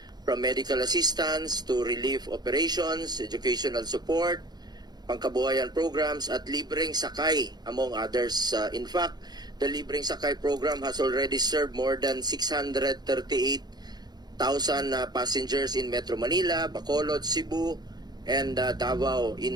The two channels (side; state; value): left; late; 0.20 ms